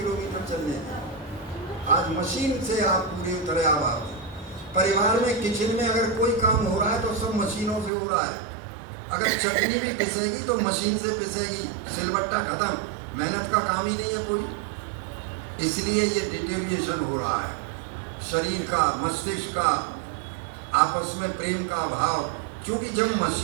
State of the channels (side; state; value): left; drops out; at 7.9 s